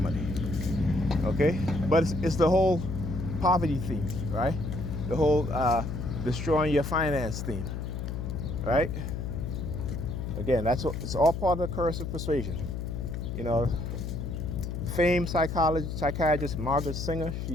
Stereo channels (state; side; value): noise; left; hum, 4 dB below the sound